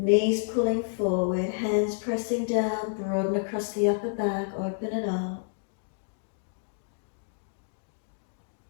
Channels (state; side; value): silent; right; digital silence